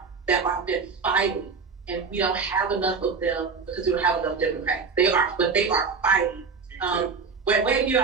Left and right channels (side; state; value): left; quieter; 5.1 dB